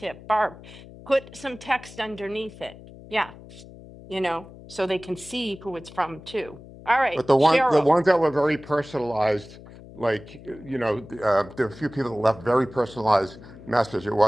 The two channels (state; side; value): noise; left; hum, 18 dB below the sound